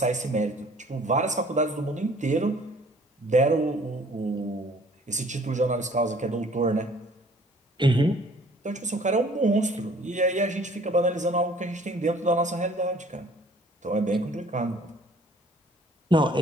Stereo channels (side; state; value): both; normal; correlation 0.55